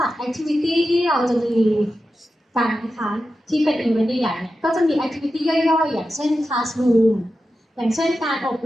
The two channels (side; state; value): both; normal; correlation 0.91